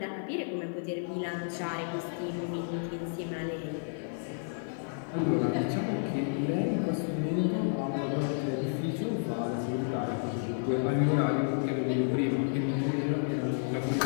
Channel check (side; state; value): right; silent; 57 dB below the other